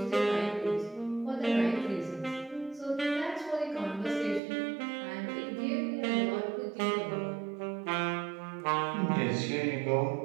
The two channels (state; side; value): drops out; left; at 4.4 s